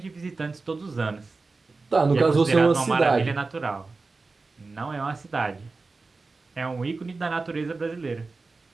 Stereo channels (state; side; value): quieter; left; 3.8 dB